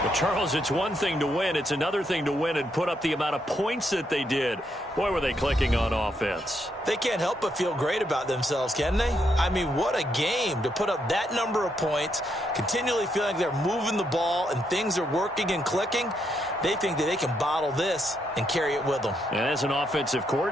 Charles, it's one thing to win. It's another thing to win and put up the amount of points that they did. Boy, were they clicking on offense. They can't help but feel great about themselves, can they? I mean, what a game to put up that number of points, continually feeling like they're moving the ball and things are working and clicking. They think that they can bottle this and carry it with them. And as an offensive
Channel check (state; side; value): normal; both; correlation 0.78